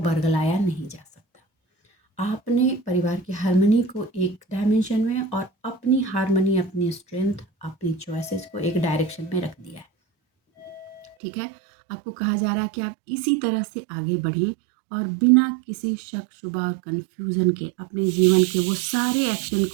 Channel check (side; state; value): left; drops out; at 11.2 s